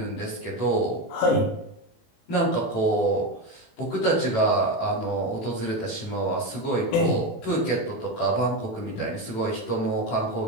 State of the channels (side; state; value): right; late; 18 ms